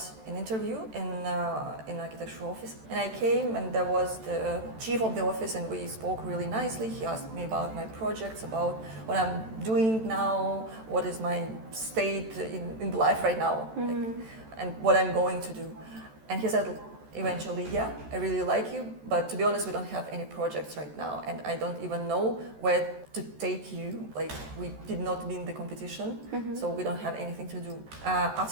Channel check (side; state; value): left; late; 14 ms